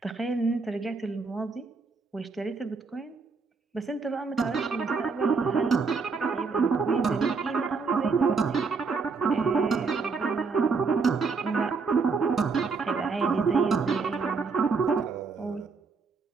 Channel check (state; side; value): quieter; left; 4.8 dB